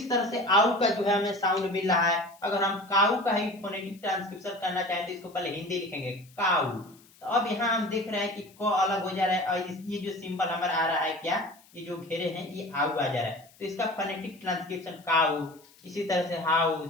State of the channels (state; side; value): noise; left; hiss, 27 dB below the sound